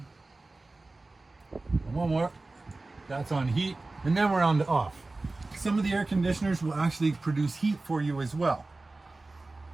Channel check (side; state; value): left; quieter; 3.2 dB